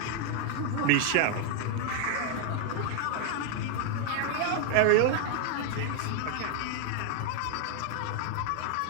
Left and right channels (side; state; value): both; different; correlation 0.00